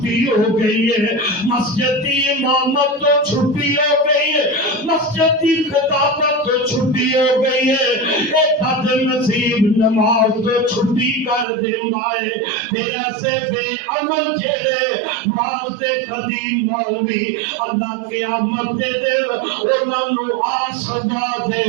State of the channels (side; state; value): left; drops out; at 11.5 s